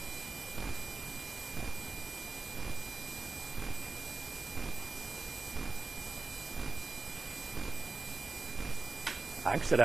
I can sit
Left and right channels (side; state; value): left; quieter; 3.8 dB